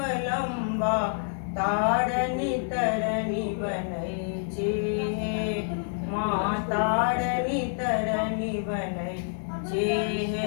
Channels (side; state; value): right; silent; digital silence